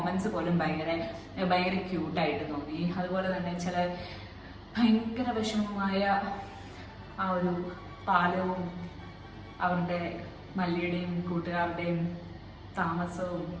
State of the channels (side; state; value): both; identical; correlation 1.00